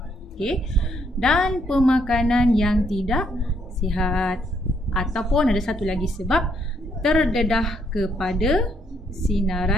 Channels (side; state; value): both; normal; correlation 0.72